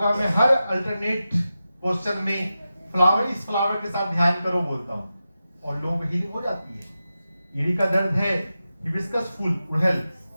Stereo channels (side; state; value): both; inverted; correlation -0.92